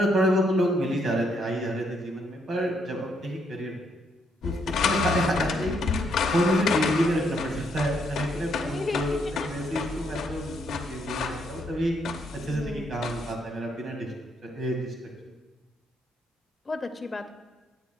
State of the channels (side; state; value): both; normal; correlation 0.73